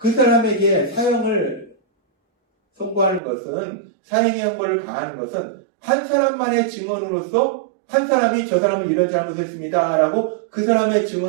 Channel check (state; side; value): drops out; left; at 3.2 s